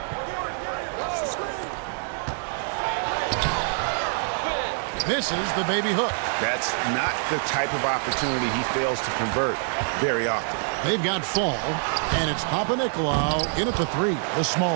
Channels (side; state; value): left; silent; 61 dB below the other